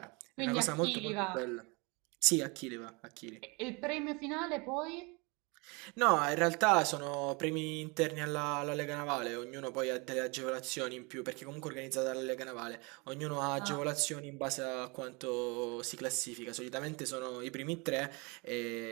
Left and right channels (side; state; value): left; quieter; 29.0 dB